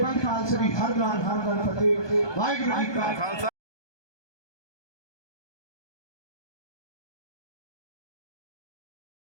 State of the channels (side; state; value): right; late; 1.2 ms